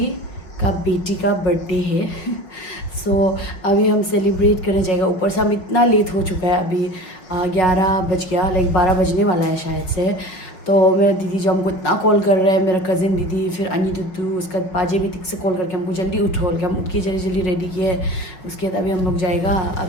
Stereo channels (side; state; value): right; late; 5.7 ms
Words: का बेटी का बर्थडे है। अभी हम सेलिब्रेट करने जाएगा। ऊपर से हम इतना लेट हो चुका है, अभी 11 बज गया, लाइक 12 बजने वाला है शायद से। तो मेरा दीदी जो हमको इतना कॉल कर रहा है, मेरा कज़िन दीदी, फिर अनी दुद्दू, उसका पाजे भी तिक से कॉल करके हमको जल्दी उठो, हम उठ के जल्दी जल्दी रेडी किए। उसके बाद अभी हम लोग जाएगा।